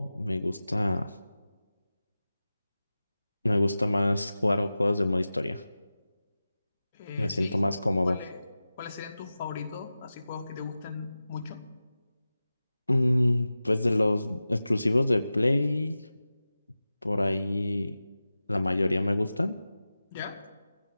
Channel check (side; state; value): both; inverted; correlation -0.95